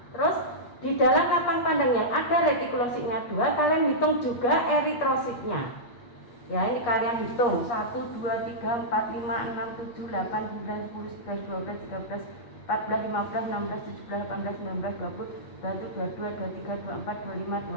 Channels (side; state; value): right; late; 8.6 ms